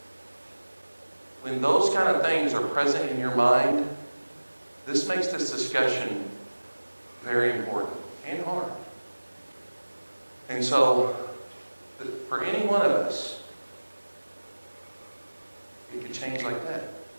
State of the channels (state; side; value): inverted; both; correlation -1.00